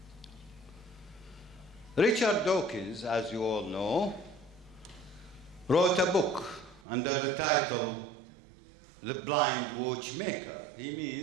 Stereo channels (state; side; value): drops out; left; at 6.8 s